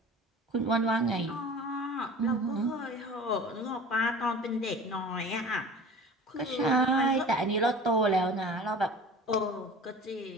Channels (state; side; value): normal; both; correlation 0.41